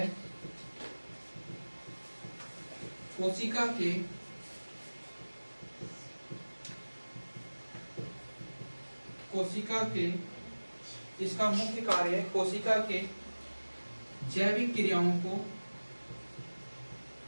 कोशिका के इसका मुख्य कार्य है कोशिका के जैविक क्रियाओं को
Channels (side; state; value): both; inverted; correlation -1.00